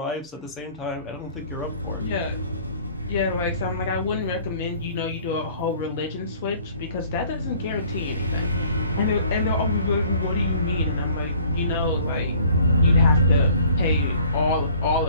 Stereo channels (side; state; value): both; inverted; correlation -0.54